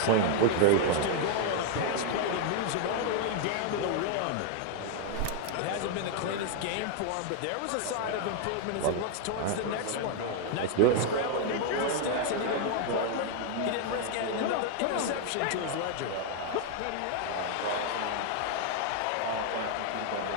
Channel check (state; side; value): different; both; correlation 0.00